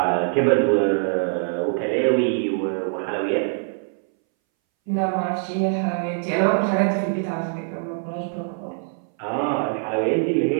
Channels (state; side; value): silent; left; 62 dB below the other